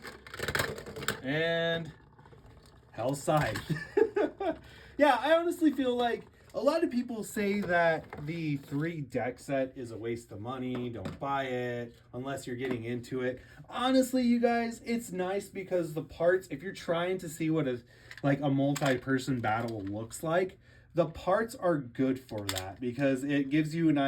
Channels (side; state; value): both; identical; correlation 1.00